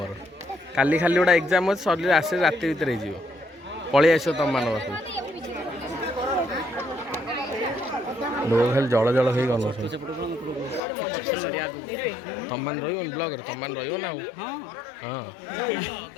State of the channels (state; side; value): drops out; right; at 10.8 s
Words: କାଲି ଖାଲି ଗୋଟେ ଏକ୍ଜାମ୍ ଅଛି ସରିଲେ ଆସେ ରାତି ଭିତରେ ହେଇଯିବ ପଳେଇ ଆସିବ ତମମାନଙ୍କ ପାଖକୁ ଲୋକ ଖାଲି ଜଳ ଜଳ ହେଇ ଗଲ ତମମାନେ ରହିବନି ବ୍ଲଗ୍ରେ ତମମାନେ ରହିବ ନା ଆଉ ହଁ